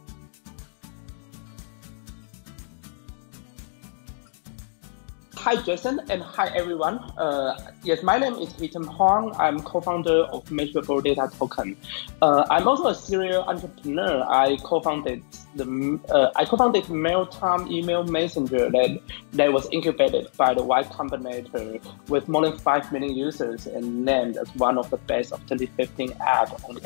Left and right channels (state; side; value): silent; right; digital silence